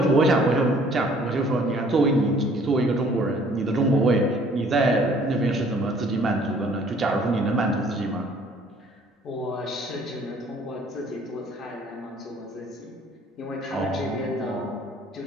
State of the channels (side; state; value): both; normal; correlation 0.57